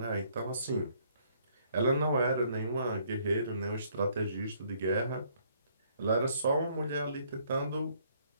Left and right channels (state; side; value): inverted; both; correlation -0.65